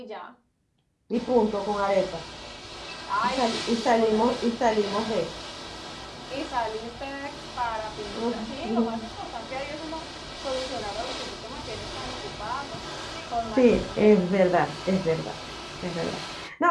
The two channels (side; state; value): both; identical; correlation 1.00